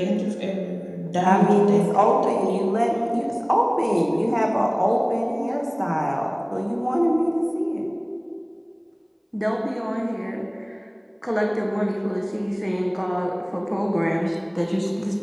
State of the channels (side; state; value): both; identical; correlation 1.00